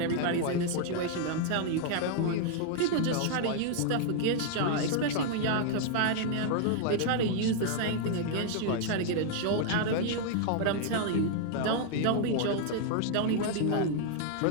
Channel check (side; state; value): both; different; correlation 0.00